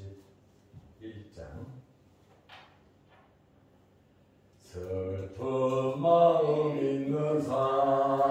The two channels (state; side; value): identical; both; correlation 1.00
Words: 91장. 슬픈 마음 있는